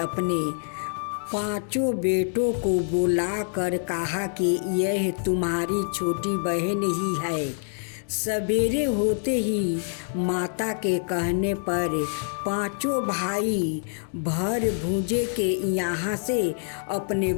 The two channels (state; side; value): silent; right; digital silence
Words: 5 बेटों को बुलाकर कहा कि यह तुम्हारी छोटी बहन ही है। सवेरे होते ही माता के कहने पर 5 भाई भर भूजे के यहाँ से अपने